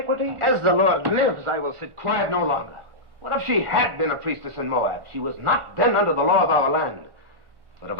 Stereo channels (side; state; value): left; late; 1.1 ms